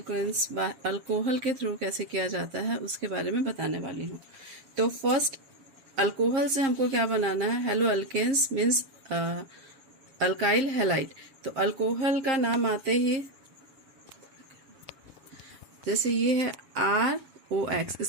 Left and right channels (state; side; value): late; left; 7.5 ms